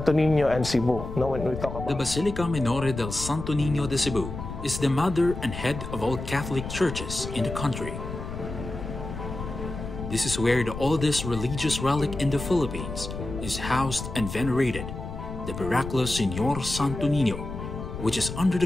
Niño and Cebu, no, when we talk about the Basilica Minore del Santo Niño de Cebu is the mother and head of all Catholic churches in the country. This is where the oldest religious relic in the Philippines is housed and venerated, the miraculous Señor Santo Niño, which is under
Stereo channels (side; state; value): left; noise; rumble, 8 dB below the sound